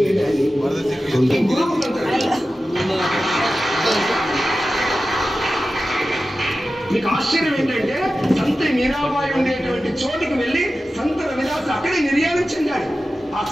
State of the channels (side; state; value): both; normal; correlation 0.94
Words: మీకు ఆశ్చర్యం ఏంటంటే సంత మీరాబాయి ఉండేటువంటి చోటుకి వెళ్ళి సంత రవిదాస్ అక్కడే నిర్యాణం చెందాడు. ఆ